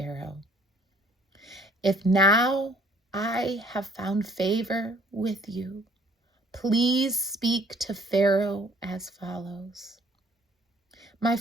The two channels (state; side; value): normal; both; correlation 0.58